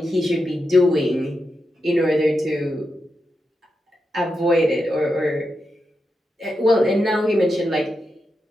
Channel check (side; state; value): both; normal; correlation 0.87